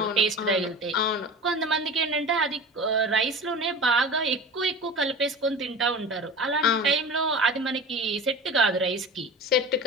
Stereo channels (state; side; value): normal; both; correlation 0.34